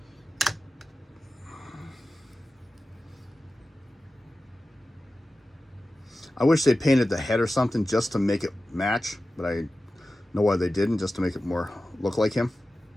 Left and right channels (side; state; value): both; normal; correlation 0.94